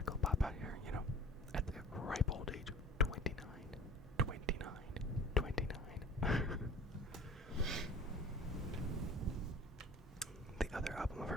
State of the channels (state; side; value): normal; both; correlation 0.43